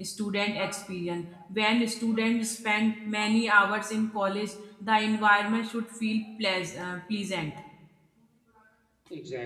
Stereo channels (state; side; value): identical; both; correlation 1.00